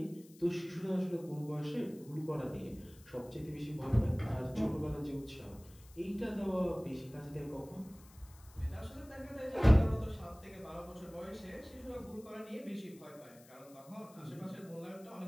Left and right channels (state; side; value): noise; left; hiss, 24 dB below the sound